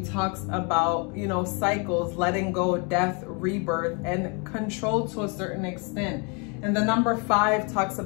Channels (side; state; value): right; quieter; 33.6 dB